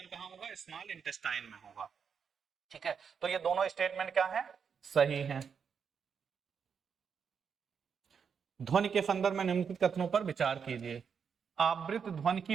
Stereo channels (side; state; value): left; quieter; 6.6 dB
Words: कहां होगा, स्मॉल इंटेस्टाइन में होगा। ठीक है, तो ये दोनों स्टेटमेंट क्या है, सही है। ध्वनि के संदर्भ में निम्नलिखित कथनों पर विचार कीजिए। आवृत्त ध्वनि